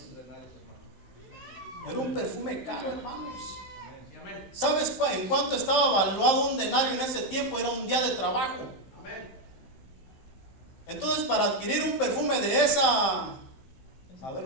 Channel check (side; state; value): right; late; 15 ms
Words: Era un perfume caro, hermanos. ¿Sabes en cuánto estaba valuado un denario en ese tiempo? Era un día de trabajo. Entonces, para adquirir un perfume de esa, a ver